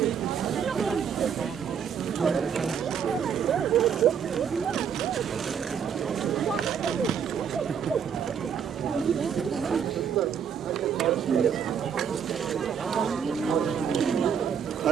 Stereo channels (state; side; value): quieter; left; 7.6 dB